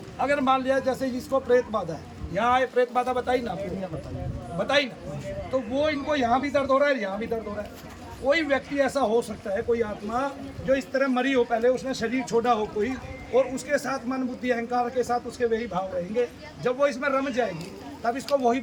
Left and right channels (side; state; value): both; identical; correlation 1.00